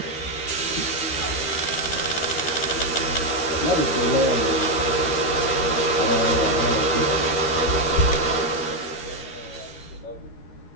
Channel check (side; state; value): right; late; 13 ms